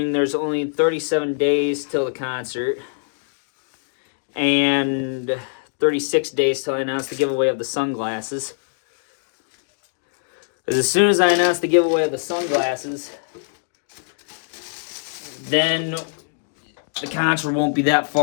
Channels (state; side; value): silent; right; digital silence